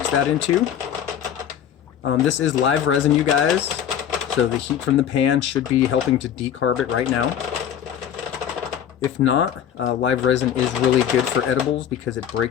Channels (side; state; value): right; quieter; 9.5 dB